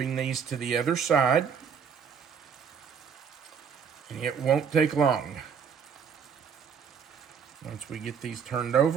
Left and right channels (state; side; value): quieter; left; 6.8 dB